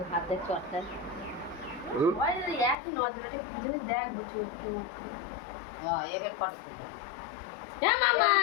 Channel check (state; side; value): drops out; right; at 2.8 s